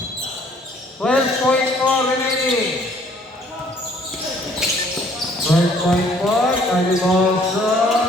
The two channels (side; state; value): both; normal; correlation 0.60